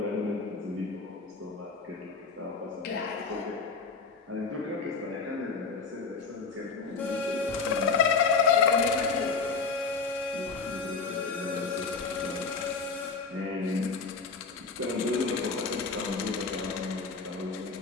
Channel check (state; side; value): quieter; right; 4.8 dB